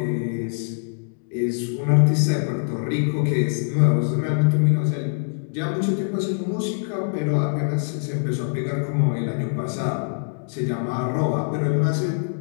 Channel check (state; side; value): silent; right; digital silence